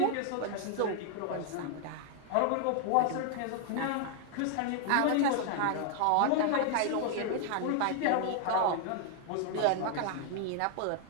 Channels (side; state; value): both; different; correlation 0.00